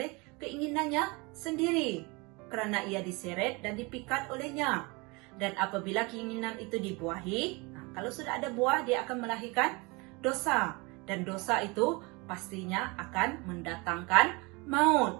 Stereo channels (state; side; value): quieter; left; 27.1 dB